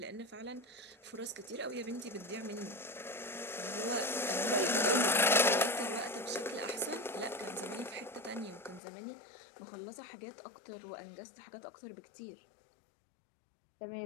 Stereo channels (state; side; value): drops out; right; at 8.8 s